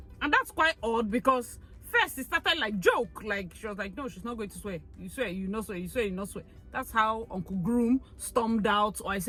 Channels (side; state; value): both; identical; correlation 1.00